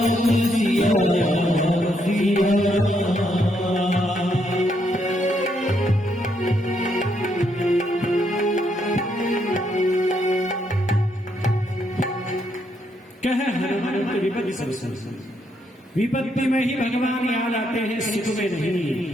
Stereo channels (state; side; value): normal; both; correlation 0.75